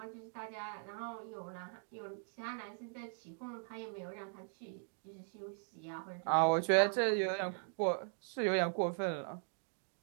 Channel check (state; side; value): silent; left; 51 dB below the other